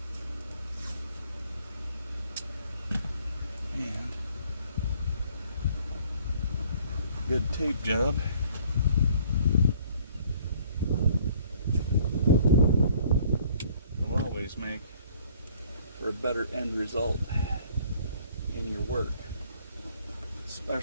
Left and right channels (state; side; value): inverted; both; correlation -0.58